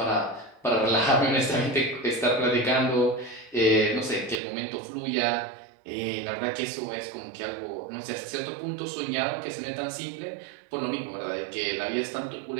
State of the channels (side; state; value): left; drops out; at 4.4 s